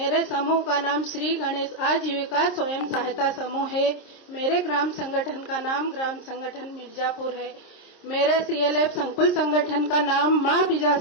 समूह का नाम श्री गणेश आजीविका स्वयं सहायता समूह है। मेरे ग्राम संगठन का नाम ग्राम संगठन मिर्जापुर है। मेरे सीएलएफ संकुल संगठन का नाम मां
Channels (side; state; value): right; late; 26 ms